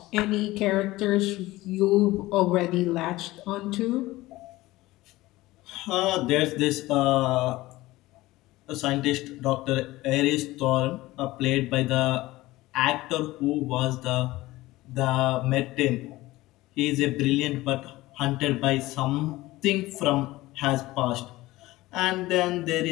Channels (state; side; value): quieter; right; 18.4 dB